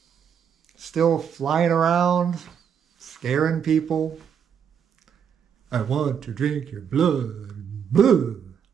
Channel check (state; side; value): quieter; left; 7.8 dB